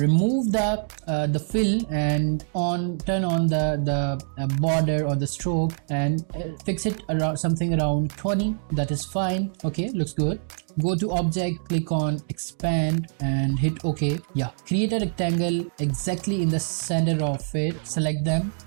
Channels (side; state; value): left; silent; digital silence